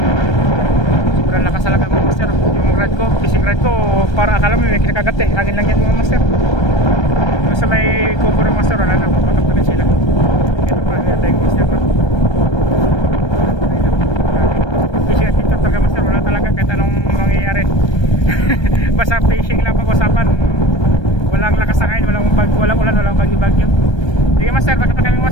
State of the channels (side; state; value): right; late; 1.3 ms